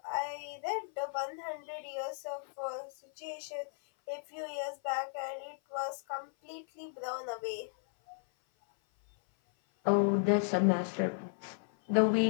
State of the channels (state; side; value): silent; right; 55 dB below the other